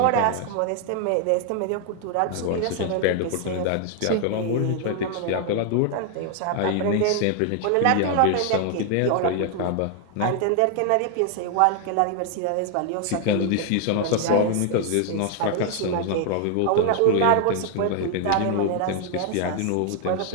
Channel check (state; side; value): different; both; correlation 0.00